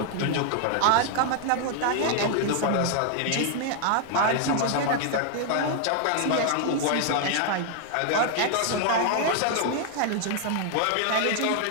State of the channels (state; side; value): different; both; correlation 0.00